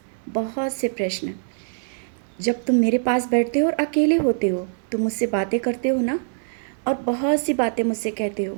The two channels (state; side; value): silent; left; 63 dB below the other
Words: बहुत से प्रश्न। जब तुम मेरे पास बैठते हो और अकेले होते हो, तुम मुझसे बातें करते हो ना, और बहुत सी बातें मुझसे कहते हो।